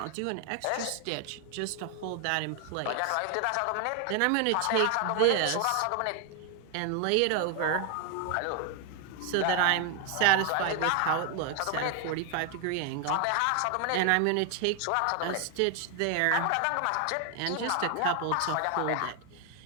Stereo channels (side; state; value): both; different; correlation 0.00